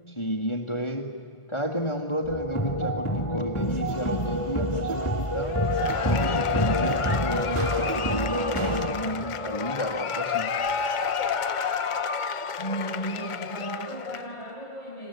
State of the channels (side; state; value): right; late; 1.5 ms